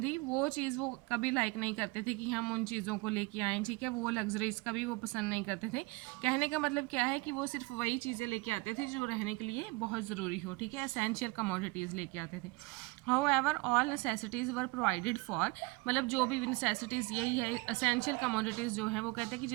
थी वो चीज़ वो कभी लाइक नहीं करते थे कि हम उन चीज़ों को लेके आएँ, ठीक है। वो लग्जरीज कभी वो पसंद नहीं करते थे। कहने का मतलब क्या है कि वो सिर्फ वही चीज़ें लेके आते थे जो रहने के लिए बहुत ज़रूरी हो, ठीक है। एसेंशियल कमोडिटीज़ लेके आते थे। However all necessities were provided for, मतलब जो भी नेसेसिटीज़, यही है एसेंशियल कमोडिटीज़ जो हैं, वो कहते हैं कि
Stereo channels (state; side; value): quieter; left; 24.7 dB